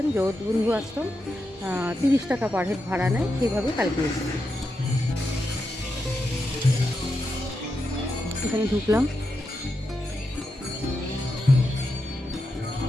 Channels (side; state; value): both; normal; correlation 0.86